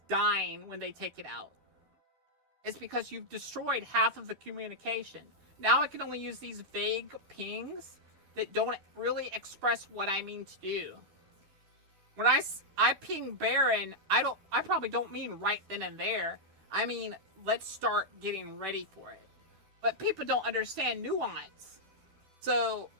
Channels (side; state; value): left; late; 12 ms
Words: dying when they take it out. It's because you've destroyed half of the communication. Now I can only use these vague pings that don't really express what I mean to do. When I ping Baron, I probably don't mean right then and there. I mean, let's start getting ready for it. But people don't understand nuance. So